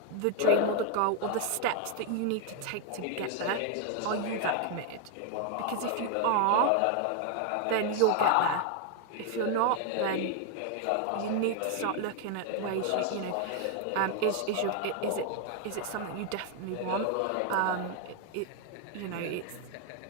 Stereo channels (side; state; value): both; different; correlation 0.00